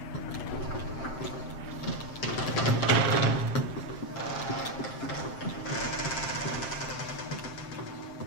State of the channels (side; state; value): right; late; 7.6 ms